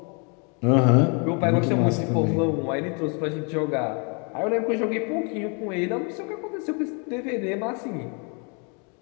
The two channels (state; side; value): quieter; right; 35.6 dB